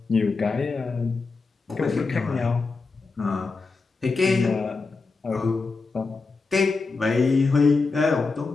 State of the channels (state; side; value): quieter; right; 4.1 dB